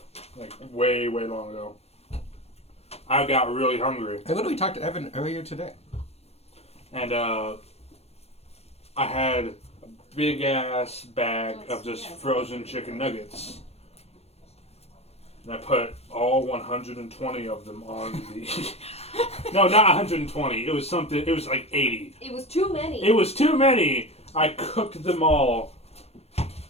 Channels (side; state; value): right; late; 0.30 ms